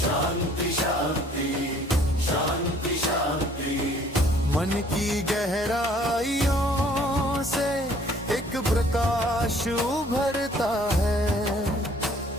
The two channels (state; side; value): normal; both; correlation 0.58